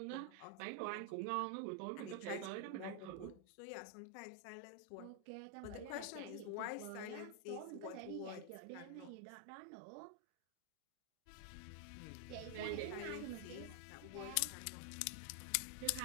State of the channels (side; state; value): both; different; correlation 0.00